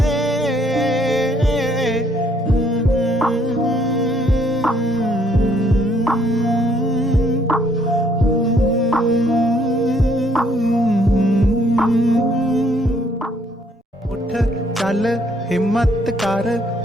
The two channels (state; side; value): normal; both; correlation 0.66